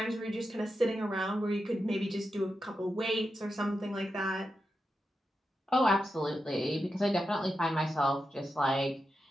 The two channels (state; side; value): normal; both; correlation 0.89